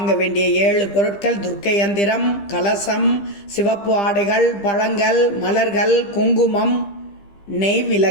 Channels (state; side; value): late; right; 15 ms